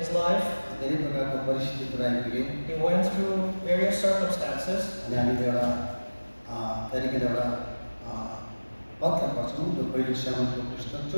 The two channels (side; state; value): both; inverted; correlation -1.00